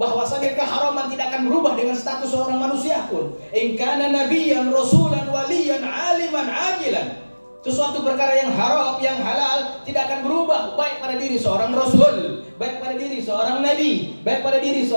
bahwasanya keharaman tidak akan berubah dengan status seorang manusia pun. In kana nabiyyan rasulan waliyan aliman ajilan. Sesuatu perkara yang haram, yang halal tidak akan berubah baik pada diri seorang rasul, baik pada diri seorang nabi, baik pada diri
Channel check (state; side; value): inverted; both; correlation -1.00